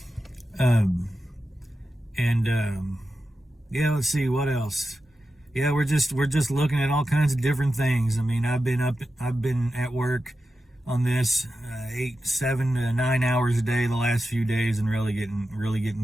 Yeah, let's see what else. Yeah, we're just looking at all kinds of different things. I mean, I've been at work on this 8, 7 to 9 hours a day the last few days, and really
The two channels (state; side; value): normal; both; correlation 0.91